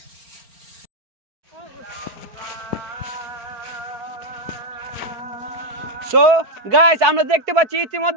সো গাইস, আমরা দেখতে পাচ্ছি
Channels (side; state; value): left; late; 4.7 ms